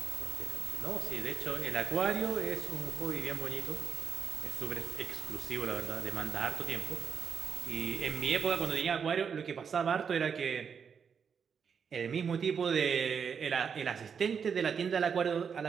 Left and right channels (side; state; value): left; quieter; 6.7 dB